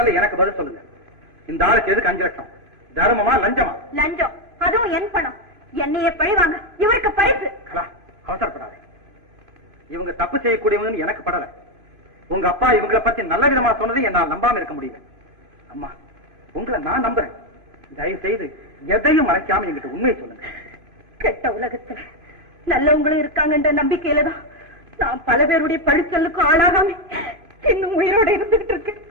எனக்கு பதில் சொல்லுங்க. இந்த ஆளுக்கு எதுக்கு 5 லட்சம்? தர்மமா லஞ்சமா? லஞ்சம். அதுவும் என் பணம். என்னையே பழிவாங்க. இவருக்கு பரிசு. அவசரப்படாத. இவங்க தப்பு செய்யக்கூடியவங்கன்னு எனக்கு படல. உங்க அப்பா இவங்களை பத்தி நல்ல விதமா சொன்னது என்னால் நம்பாம இருக்க முடியல. அம்மா, உங்களை நான் நம்புறேன். தயவு செய்து எதையும் மறைக்காம என்கிட்ட உண்மையை சொல்லுங்க. கெட்ட உலகத்துல நல்லவங்களும் இருக்காங்கன்ற நம்பிக்கையில தான் நான் பல பேருடைய பழிச்சொல்லுக்கும் ஆளாகாம இன்னும் உயிரோட இருந்துகிட்டு இருக்கேன்.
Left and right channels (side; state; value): left; late; 3.0 ms